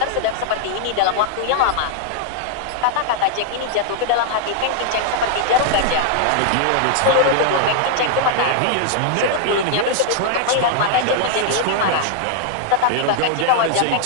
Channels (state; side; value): different; both; correlation -0.01